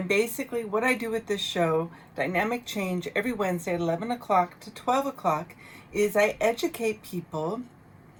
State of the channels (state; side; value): identical; both; correlation 1.00